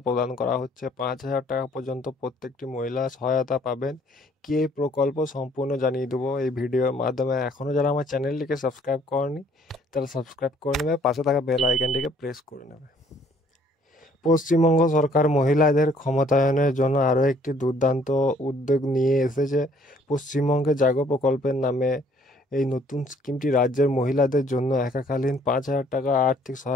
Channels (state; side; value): normal; both; correlation 0.61